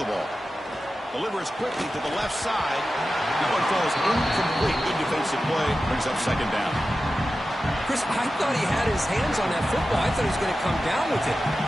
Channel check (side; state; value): both; normal; correlation 0.93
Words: ball. Delivers quickly to the left side. That one falls incomplete. Good defensive play. Brings up second down. Chris, I thought he had his hands on that football. I thought he was going to come down with it.